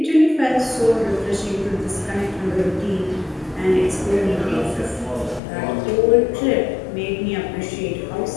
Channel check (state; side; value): drops out; right; at 5.4 s